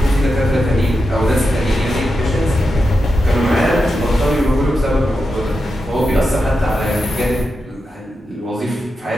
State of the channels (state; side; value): normal; both; correlation 0.88